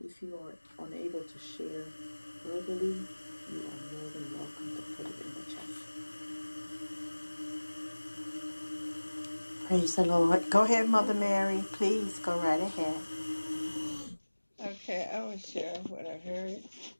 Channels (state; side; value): inverted; both; correlation -1.00